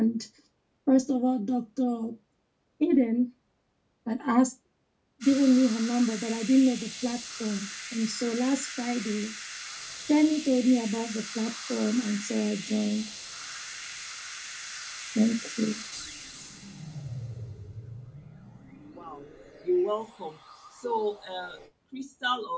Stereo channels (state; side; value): identical; both; correlation 1.00